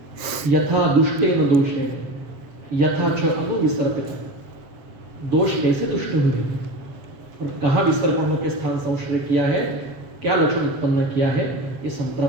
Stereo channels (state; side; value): late; left; 7.4 ms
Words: यथा दुष्टेन दोषेण यथा च अनुविसर्पित, दोष कैसे दुष्ट हुए और कहाँ विसर्पणों के स्थान संश्रय किया है, क्या लक्षण उत्पन्न किया है, ये